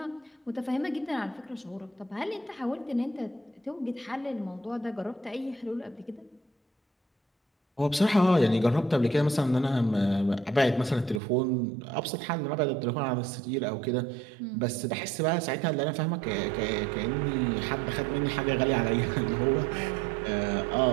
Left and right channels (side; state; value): left; drops out; at 11.2 s